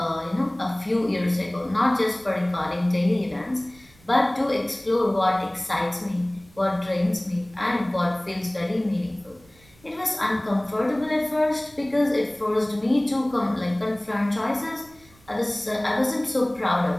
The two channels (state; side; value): noise; right; rumble, 27 dB below the sound